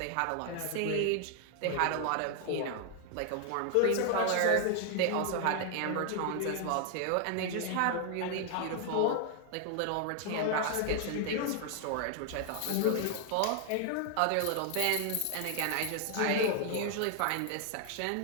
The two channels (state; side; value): different; both; correlation 0.00